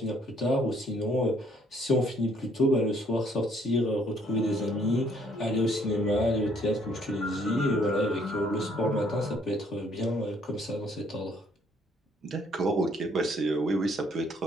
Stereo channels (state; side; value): normal; both; correlation 0.65